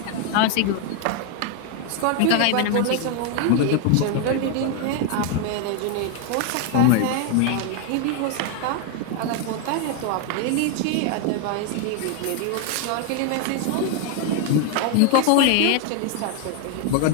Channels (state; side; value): different; both; correlation 0.01